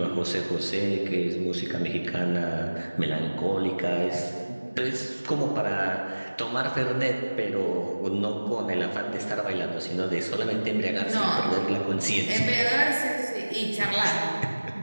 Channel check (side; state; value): both; inverted; correlation -1.00